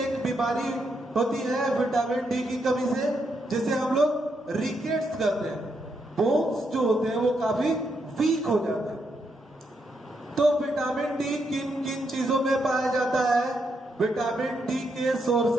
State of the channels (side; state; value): both; normal; correlation 0.80